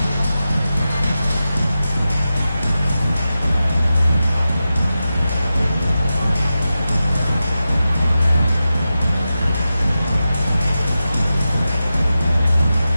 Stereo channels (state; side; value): inverted; both; correlation -0.92